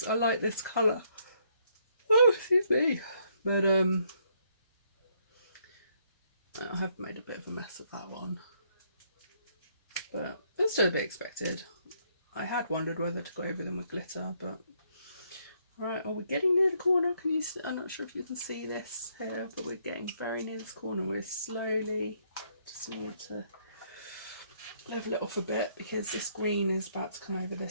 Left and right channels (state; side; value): inverted; both; correlation -0.71